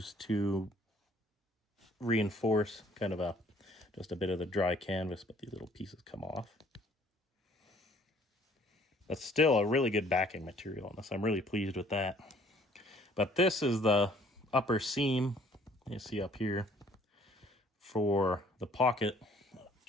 to reinforce kind of just a bit of the dry canvas, but these little pieces come off. That's still a really good backing material on this. I'm really pleased with that. But this is the upper seam you see up here for the pocket. I'll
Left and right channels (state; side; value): normal; both; correlation 0.59